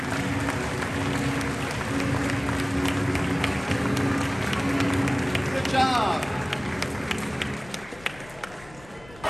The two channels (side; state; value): left; noise; rumble, 22 dB below the sound